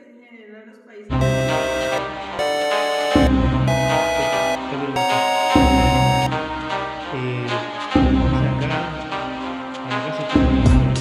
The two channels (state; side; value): identical; both; correlation 1.00